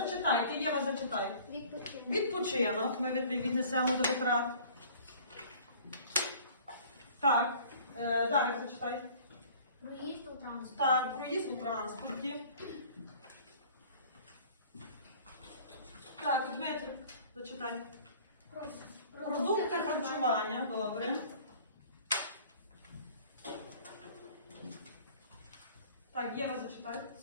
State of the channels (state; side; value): inverted; both; correlation -0.49